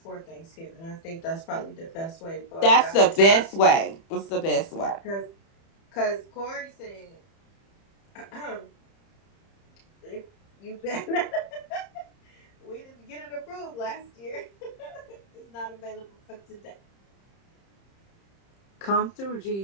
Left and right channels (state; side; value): late; right; 30 ms